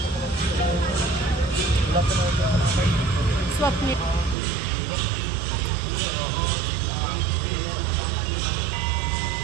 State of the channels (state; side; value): drops out; left; at 4.4 s